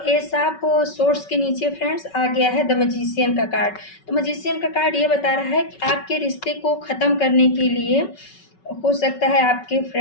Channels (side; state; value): right; late; 5.3 ms